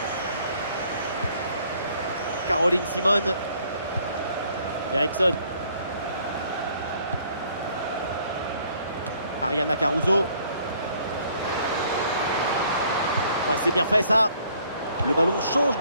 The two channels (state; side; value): inverted; both; correlation -0.61